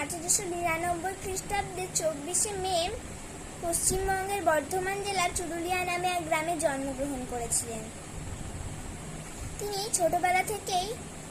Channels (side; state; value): both; identical; correlation 1.00